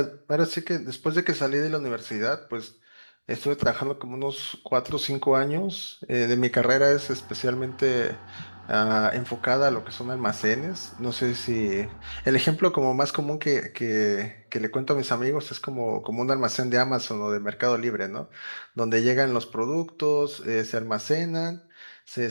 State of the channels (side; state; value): both; inverted; correlation -1.00